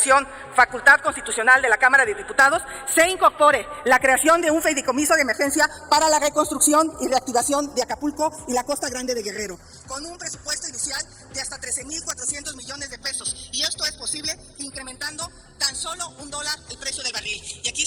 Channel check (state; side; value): identical; both; correlation 1.00